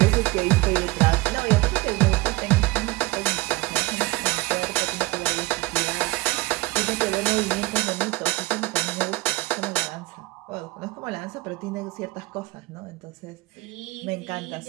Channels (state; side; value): quieter; left; 20.9 dB